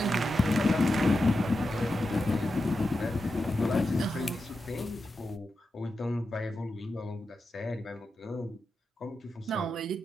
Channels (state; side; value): normal; both; correlation 0.89